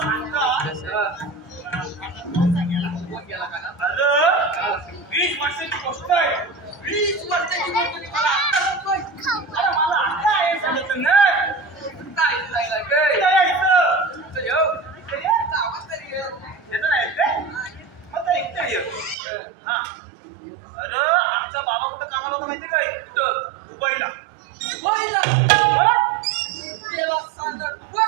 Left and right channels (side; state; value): left; drops out; at 19.2 s